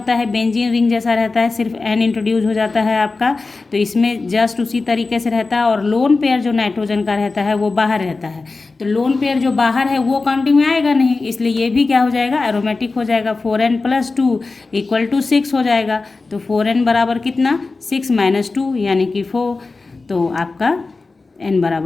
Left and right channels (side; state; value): right; quieter; 3.8 dB